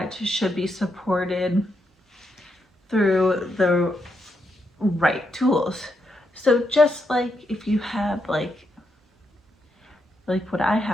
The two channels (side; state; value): both; normal; correlation 0.81